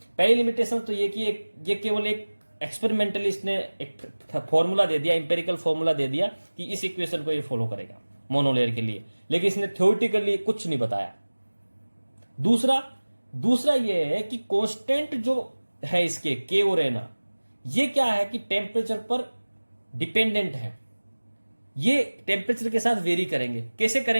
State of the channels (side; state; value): both; inverted; correlation -1.00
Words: पहली लिमिटेशन तो ये कि ये केवल एक एक्सपेरिमेंटली इसने एक फॉर्मूला दे दिया, इंपेरिकल फॉर्मूला दे दिया कि इस इक्वेशन को ये फॉलो करेगा मोनोलेयर के लिए, लेकिन इसने थ्योरेटिकली कुछ नहीं बताया। दूसरा ये है कि कांस्टेंट जो है इसके के और एन, ये क्या है कि टेम्परेचर पर डिपेंडेंट है। ये टेम्परेचर के साथ वेरी करेंगे। कैसे